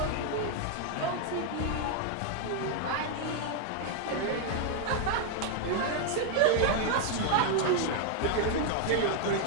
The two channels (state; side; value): different; both; correlation 0.00